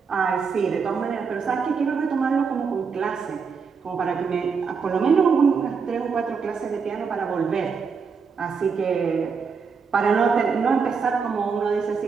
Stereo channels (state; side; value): quieter; left; 5.6 dB